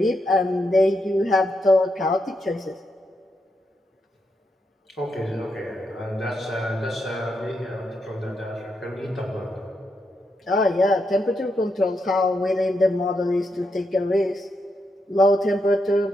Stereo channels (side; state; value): both; normal; correlation 0.82